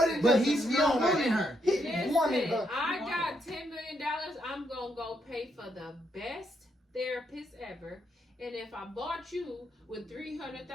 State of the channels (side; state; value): both; normal; correlation 0.77